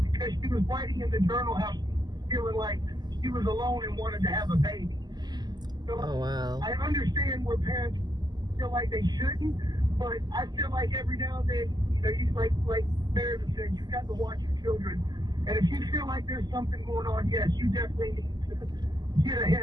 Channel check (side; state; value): left; late; 0.20 ms